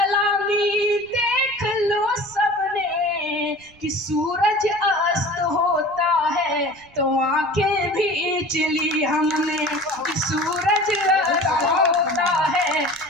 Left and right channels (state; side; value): noise; right; rumble, 28 dB below the sound